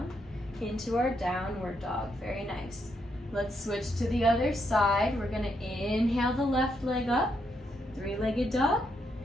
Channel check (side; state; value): both; normal; correlation 0.78